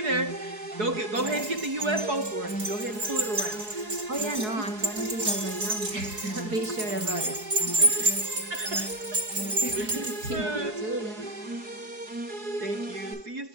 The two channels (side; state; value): left; late; 4.7 ms